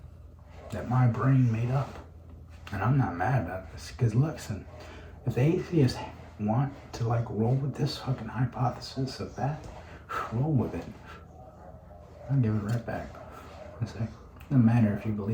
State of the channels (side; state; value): both; identical; correlation 1.00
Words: that my brain made up. And I'm not mad about this, because listen, if the atheists want to like roll with this fucking hypothesis of that, roll with it. I'll give it right back. I say, doesn't matter if you